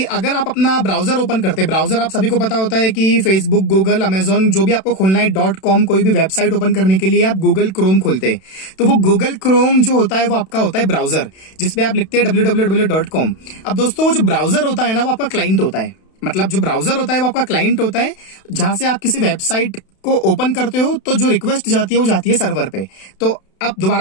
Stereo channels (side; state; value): right; late; 32 ms